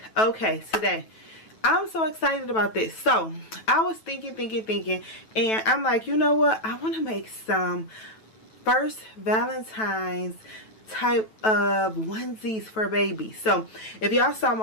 Okay, today I'm so excited about this. So I was thinking, and I'm like, you know what? I want to make some first Valentine's type of onesies for babies. So if y'all saw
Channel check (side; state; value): right; late; 9.2 ms